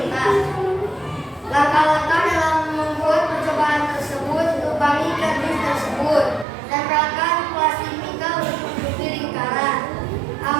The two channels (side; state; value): left; drops out; at 6.5 s